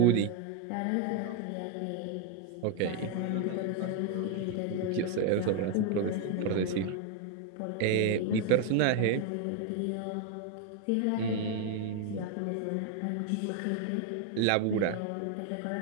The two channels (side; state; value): both; different; correlation 0.01